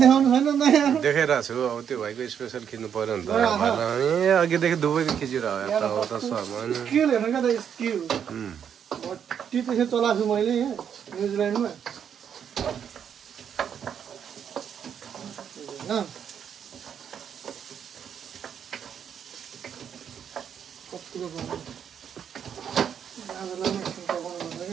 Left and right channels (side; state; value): left; quieter; 8.2 dB